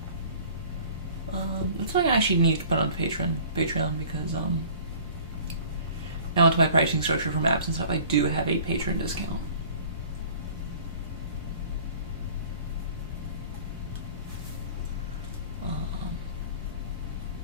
That's something I actually need to put on Patreon because now into my pricing structure for maps and stuff, I do have a patron discount.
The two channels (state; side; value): inverted; both; correlation -0.47